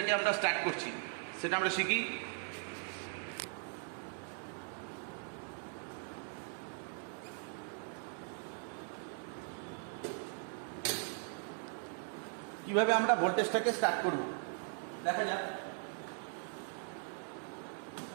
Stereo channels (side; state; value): left; silent; 51 dB below the other